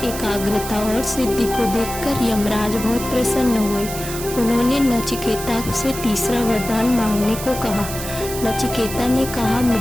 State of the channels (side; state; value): right; noise; hiss, 9 dB below the sound